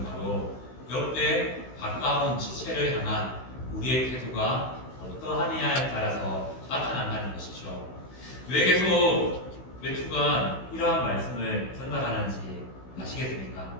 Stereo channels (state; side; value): late; right; 16 ms